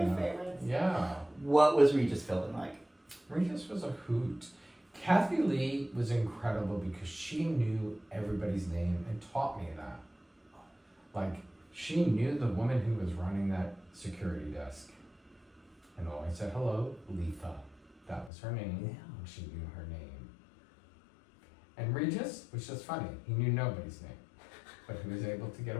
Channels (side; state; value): right; drops out; at 18.3 s